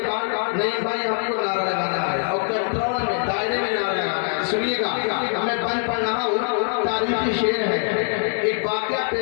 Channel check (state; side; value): silent; right; 59 dB below the other